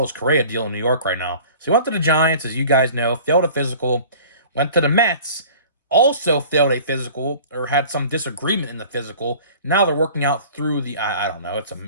Correa deal in New York right now? So he went to the Giants, as you guys know, failed a physical, went to the Mets, also failed a physical, or had some disagreement in the physical. Now they're working out through the, I don't know, it's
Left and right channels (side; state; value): both; inverted; correlation -0.45